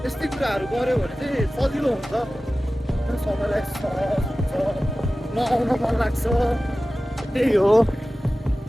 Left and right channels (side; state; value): both; normal; correlation 0.96